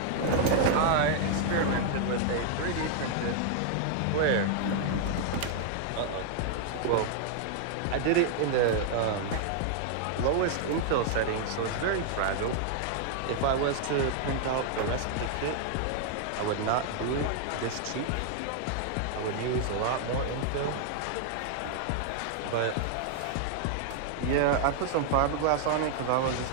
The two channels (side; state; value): both; different; correlation 0.00